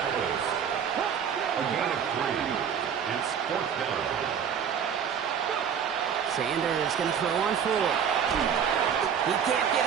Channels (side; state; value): left; quieter; 7.8 dB